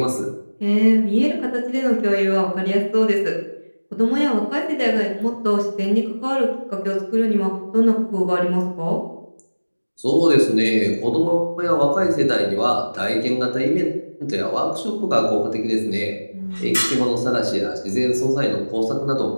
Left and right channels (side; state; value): both; inverted; correlation -1.00